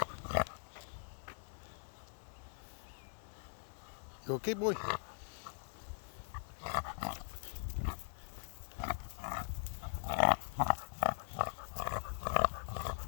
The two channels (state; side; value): silent; right; digital silence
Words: You okay, boy?